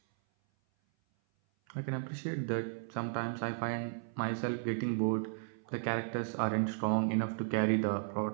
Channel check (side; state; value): left; silent; 55 dB below the other